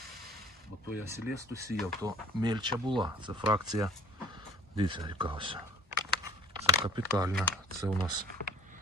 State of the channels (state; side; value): normal; both; correlation 0.51